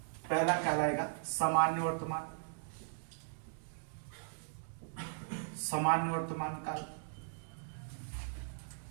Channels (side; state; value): left; silent; digital silence